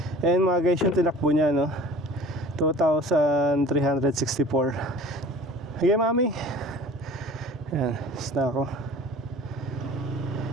Ayan mga guys, yung tinakbo niya, no? 2,364. Okay, mami. Ayan, na ako.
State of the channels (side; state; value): both; normal; correlation 0.44